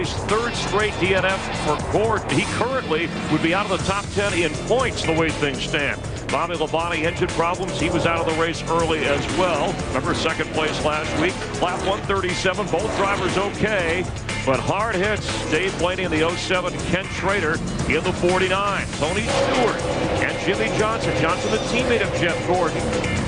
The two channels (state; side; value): identical; both; correlation 1.00